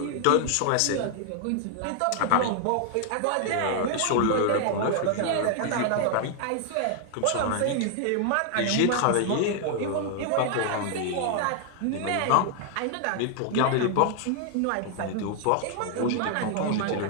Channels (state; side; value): different; both; correlation 0.00